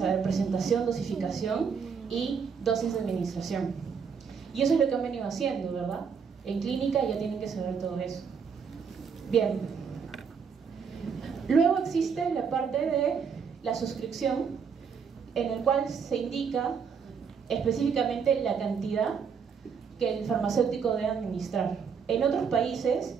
presentación, dosificación y dosis de administración. Y eso es lo que han venido haciendo, ¿verdad? En clínica ya tienen que saber todo eso. Bien. Luego existe la parte de la suscripción, en el cual se indica específicamente la cantidad que el farmacéutico debe administrar. En otros países,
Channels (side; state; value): left; quieter; 6.3 dB